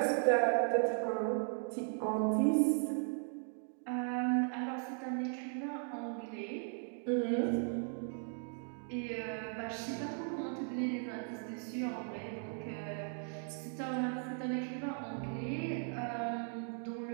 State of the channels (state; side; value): silent; left; 53 dB below the other